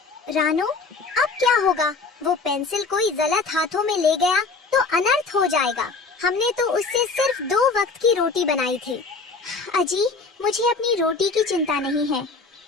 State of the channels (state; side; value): quieter; right; 4.2 dB